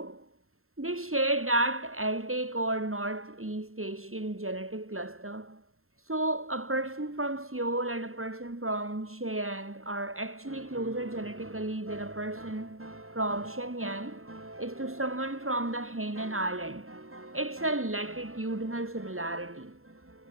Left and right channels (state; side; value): late; left; 0.62 ms